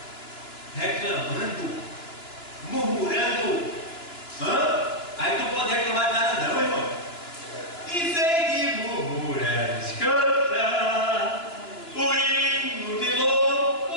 Reclamando, murmurando. Aí tu não pode reclamar de nada não, irmão. Em vez de murmurar, canta o hino de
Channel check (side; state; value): right; late; 2.9 ms